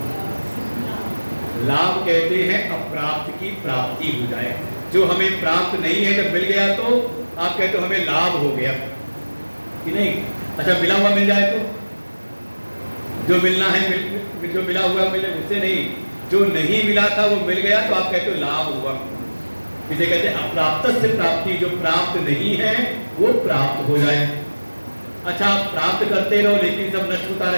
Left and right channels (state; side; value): inverted; both; correlation -1.00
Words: लाभ कहते हैं अप्राप्त की प्राप्ति हो जाए, जो हमें प्राप्त नहीं है जब मिल गया तो आप कहते हो हमें लाभ हो गया कि नहीं। अच्छा मिला हुआ मिल जाए तो जो मिलना है जो मिला हुआ मिले उससे नहीं, जो नहीं मिला था वो मिल गया तो आप कहते हो लाभ हुआ। इसे कहते हैं अप्राप्त से प्राप्ति, जो प्राप्त नहीं है वो प्राप्त हो जाए। अच्छा आप प्राप्त करते रहो लेकिन सब नष्ट होता